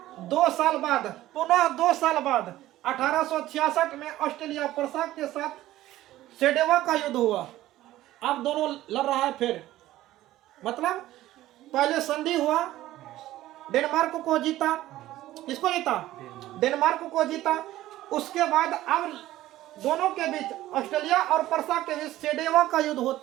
2 साल बाद, पुनः 2 साल बाद 1866 में ऑस्ट्रेलिया परसा के साथ सेडेवा का युद्ध हुआ। अब दोनों लड़ रहा है फिर, मतलब पहले संधि हुआ, डेनमार्क को जीता। किसको जीता, डेनमार्क को जीता। उसके बाद अब दोनों के बीच, ऑस्ट्रेलिया और परसा के बीच सेडेवा का युद्ध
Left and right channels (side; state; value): left; quieter; 15.1 dB